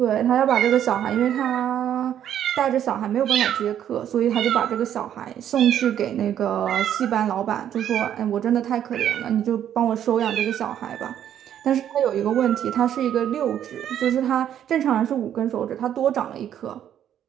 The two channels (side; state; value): left; quieter; 10.2 dB